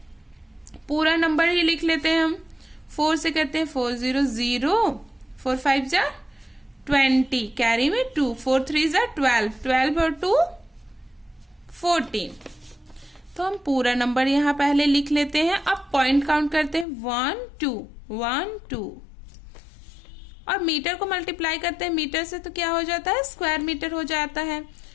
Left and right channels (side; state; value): right; drops out; at 16.9 s